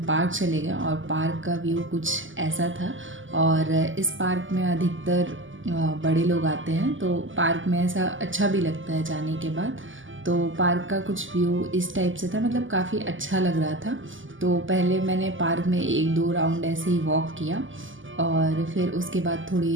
पार्क चले गए और पार्क का व्यू कुछ ऐसा था। और इस पार्क में अधिकतर बड़े लोग आते हैं, तो पार्क में ऐसा अच्छा भी लगता है जाने के बाद। तो पार्क का कुछ व्यू इस टाइप से था, मतलब काफ़ी अच्छा लग रहा था। तो पहले मैंने पार्क में 1-2 राउंड ऐसे ही वॉक किया और फिर उसके बाद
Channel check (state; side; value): late; left; 0.57 ms